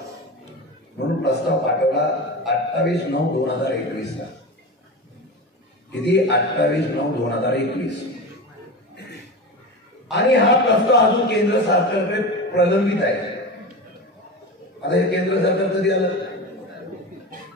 म्हणून प्रस्ताव पाठवला 28/9/2021 ला. किती? 28/9/2021. आणि हा प्रस्ताव अजून केंद्र सरकारकडे प्रलंबित आहे. आता हे केंद्र सरकार कधी आलं?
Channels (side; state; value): both; normal; correlation 0.26